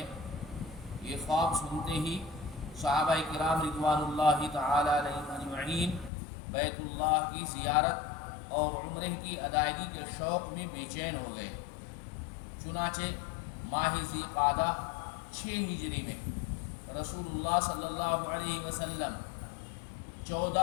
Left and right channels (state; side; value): drops out; right; at 6.1 s